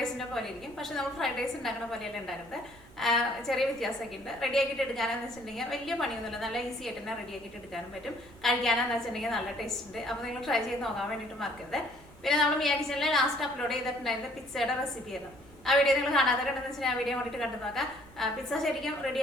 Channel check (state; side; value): noise; right; rumble, 23 dB below the sound